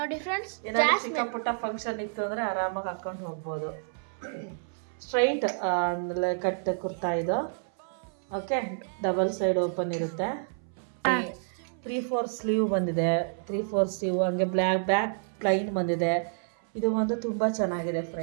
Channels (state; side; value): silent; left; 58 dB below the other